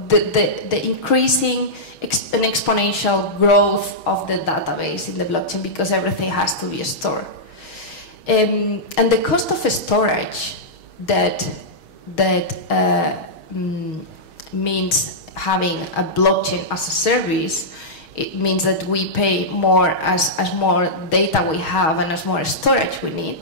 the increasing an exponential growth of the database in the blockchain, because everything has to be stored. And the cost of storage that means having a blockchain as a service, it means that we pay more as more data we have and as more storage we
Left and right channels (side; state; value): right; late; 6.4 ms